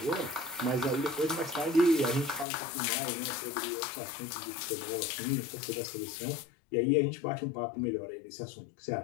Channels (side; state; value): right; drops out; at 2.5 s